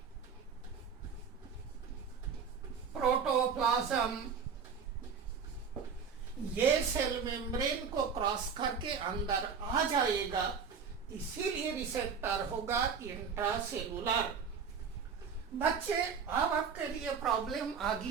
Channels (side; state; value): left; quieter; 6.2 dB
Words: प्रोटोप्लाज्म, ये सेल मेम्ब्रेन को क्रॉस करके अंदर आ जाएगा, इसीलिए रिसेप्टर होगा इंट्रासेलुलर। बच्चे, अब आपके लिए प्रॉब्लम आ